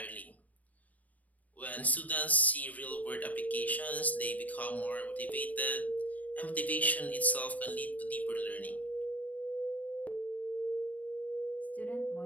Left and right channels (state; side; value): late; right; 0.074 ms